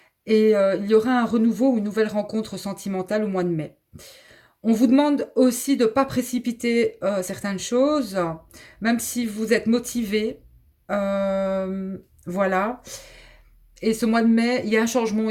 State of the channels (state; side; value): identical; both; correlation 1.00